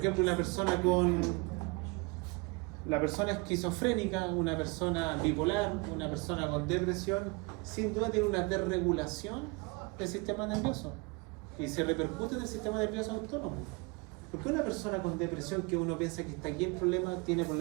ejemplo, la persona esquizofrénica, una persona bipolar, una persona con depresión, sin duda tiene una desregulación del sistema nervioso y se repercute en el sistema nervioso autónomo. ¿Por qué una persona con depresión, que uno piensa que está aquí el problema, tiene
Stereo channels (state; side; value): quieter; left; 28.1 dB